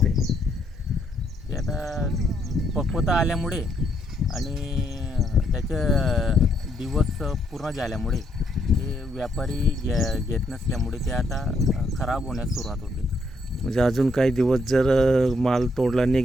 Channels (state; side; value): normal; both; correlation 0.73